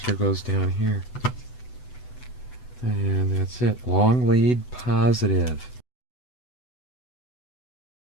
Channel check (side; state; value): right; late; 8.0 ms